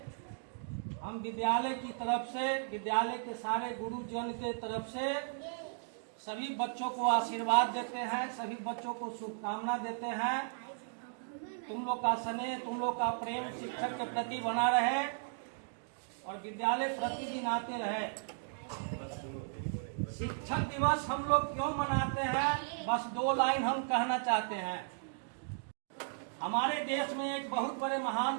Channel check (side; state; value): left; silent; digital silence